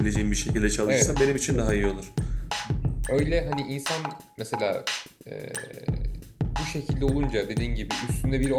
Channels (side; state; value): both; identical; correlation 1.00